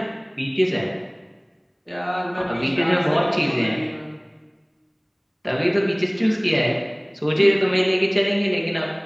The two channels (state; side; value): identical; both; correlation 1.00